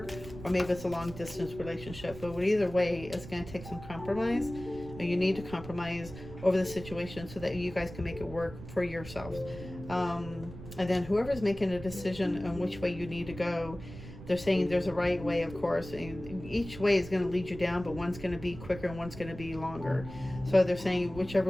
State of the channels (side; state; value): right; noise; rumble, 13 dB below the sound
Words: Or maybe it's a long distance relationship. But either way, it's going to take some compromise. You need to compromise over the situation so that you guys can make it work for yourself. And then whoever's making a decision on which way you need to go, they're saying there's a right way, of course. And each way is going to lead you down, but one's going to be quicker and one's going to be longer. So they're saying